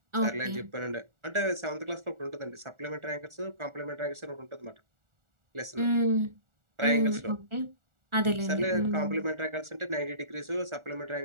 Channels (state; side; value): late; left; 1.4 ms